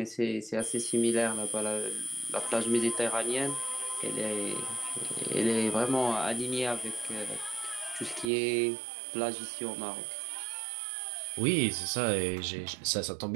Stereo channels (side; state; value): left; drops out; at 8.3 s